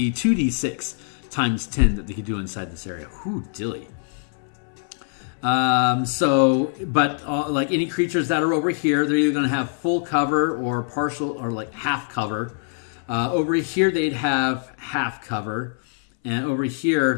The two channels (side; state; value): right; silent; 63 dB below the other